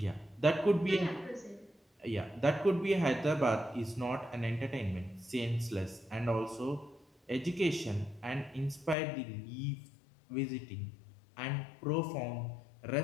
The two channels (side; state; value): right; drops out; at 9.0 s